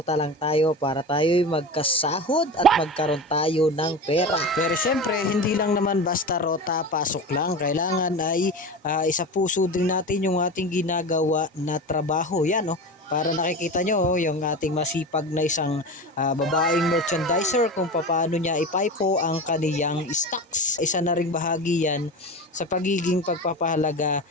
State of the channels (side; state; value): both; normal; correlation 0.27